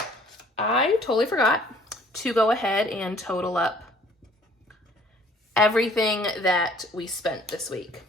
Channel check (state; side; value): normal; both; correlation 0.56